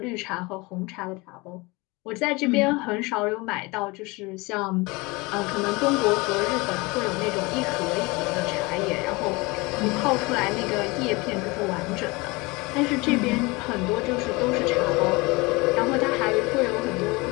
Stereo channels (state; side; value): quieter; right; 24.6 dB